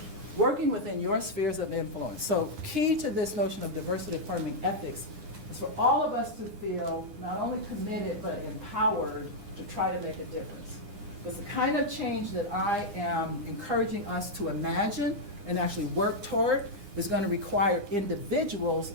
working within your spheres of influence. So key to this notion of diversity affirming ethics is for all of us to feel not only committed but empowered to try to make a difference. Because the kind of change that I am encouraging us to imagine and actually work toward is going to require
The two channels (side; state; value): left; late; 9.8 ms